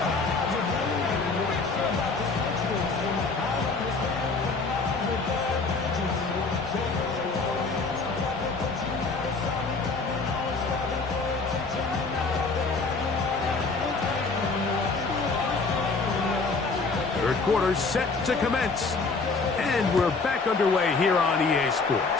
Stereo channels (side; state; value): right; quieter; 4.1 dB